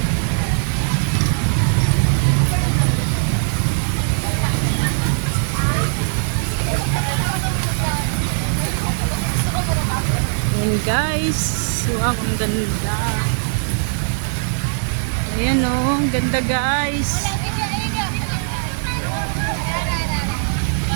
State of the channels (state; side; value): silent; left; digital silence